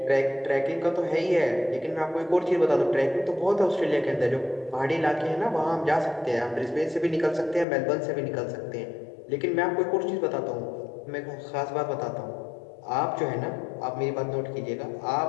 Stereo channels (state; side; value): drops out; right; at 7.7 s